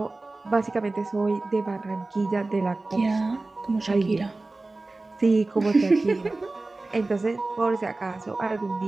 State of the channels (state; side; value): quieter; left; 3.2 dB